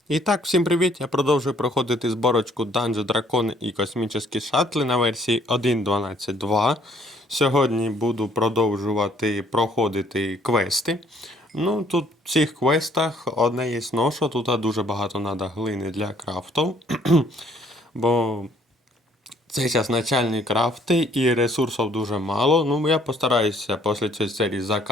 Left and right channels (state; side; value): normal; both; correlation 0.62